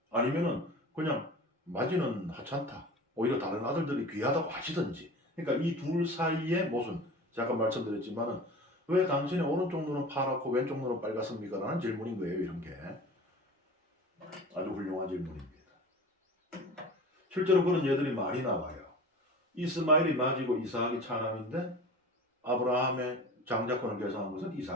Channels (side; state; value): both; normal; correlation 0.37